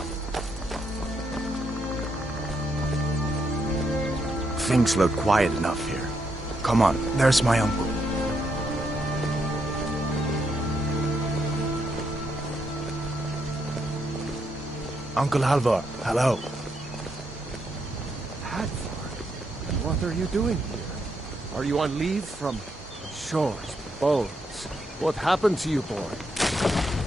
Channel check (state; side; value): normal; both; correlation 0.78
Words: Things look quiet enough here. Come on, there's my uncle. Uncle Halvor, hello. Hadvar, what are you doing here? Are you on leave from shores, bones? What happened to you, boy?